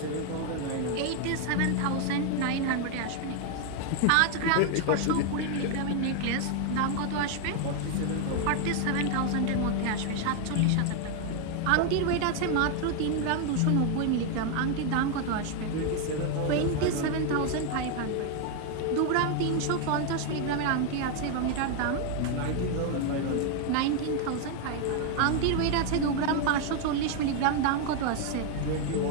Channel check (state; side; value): different; both; correlation 0.01